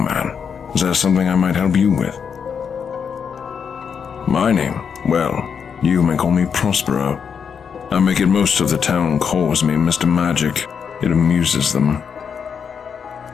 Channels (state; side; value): quieter; right; 6.8 dB